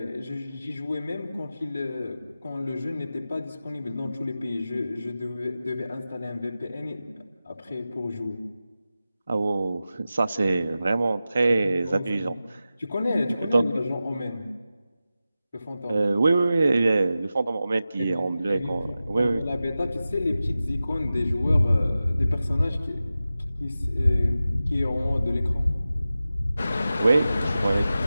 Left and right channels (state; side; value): inverted; both; correlation -0.94